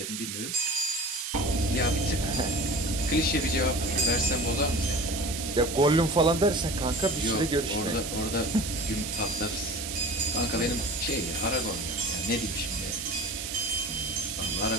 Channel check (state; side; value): noise; right; hiss, 5 dB below the sound